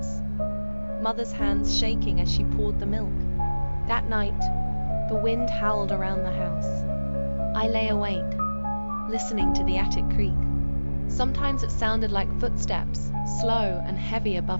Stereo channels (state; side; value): inverted; both; correlation -1.00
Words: Mother's hands shaking as she poured the milk. That night, the wind howled around the house. I lay awake, listening to the attic creak. Sometimes it sounded like footsteps, slow and heavy